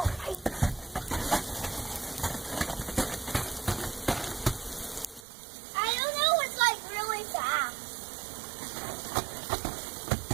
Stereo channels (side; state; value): left; drops out; at 5.2 s